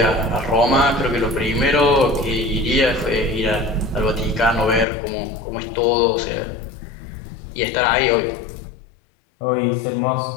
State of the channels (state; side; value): drops out; right; at 4.9 s